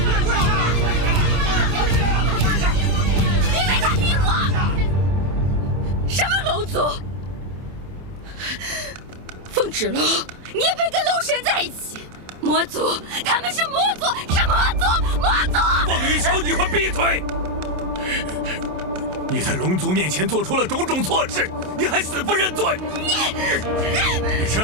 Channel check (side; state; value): left; late; 27 ms